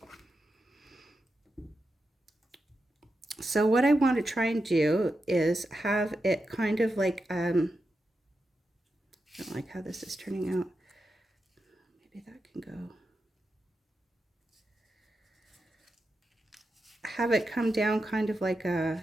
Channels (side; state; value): both; normal; correlation 0.88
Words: So what I want to try and do is have it kind of like, I don't like how this is turning out. Maybe that can go. Have it come down kind of like